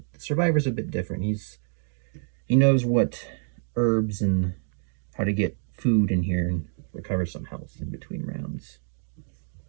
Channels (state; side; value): silent; left; digital silence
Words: the Survivor's a bit different. He knows what herbs and how to get food in here and recover some health in between rounds.